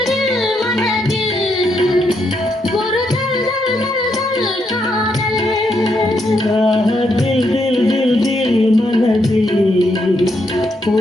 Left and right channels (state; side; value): normal; both; correlation 0.78